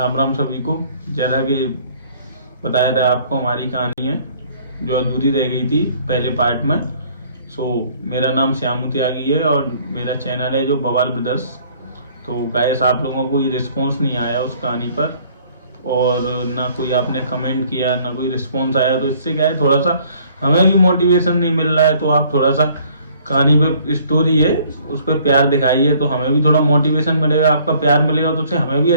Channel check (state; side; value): inverted; both; correlation -0.58